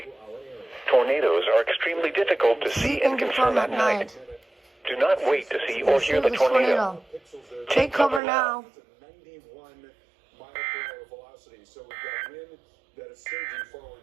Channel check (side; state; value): left; drops out; at 8.2 s